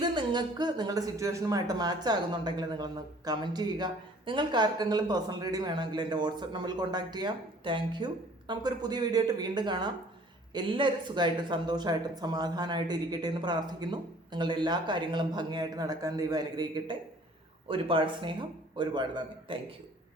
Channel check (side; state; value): both; normal; correlation 0.53